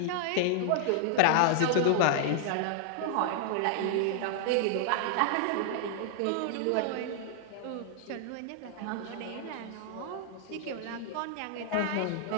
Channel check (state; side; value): different; both; correlation -0.01